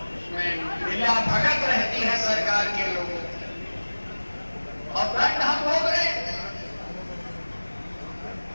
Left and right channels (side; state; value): both; inverted; correlation -1.00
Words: उसमें मिला भगत रहती है सरकार के लोगों की, और दंड हम भोग रहे हैं।